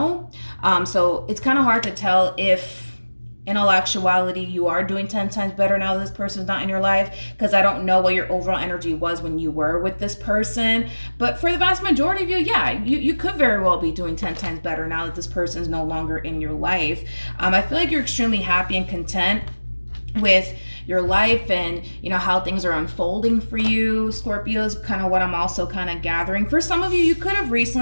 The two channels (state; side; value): inverted; both; correlation -1.00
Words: So it's kind of hard to tell if in all actuality you are doing 10 times better now that this person's not in your life, because I don't know what your overall energy was when you were with this person. But for the vast majority of you, yeah, you could very well be doing 10 times better now that this person's no longer in your life. I feel like you're extremely happy and content with your life and, you know, how things are unfolding for you, Scorpios, kind of what I'm also kind of gathering. For some of you, you could have